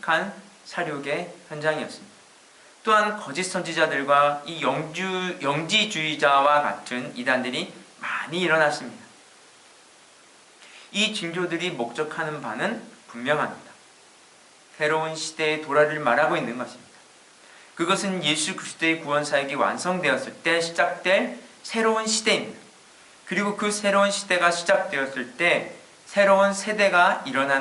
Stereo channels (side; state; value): both; identical; correlation 1.00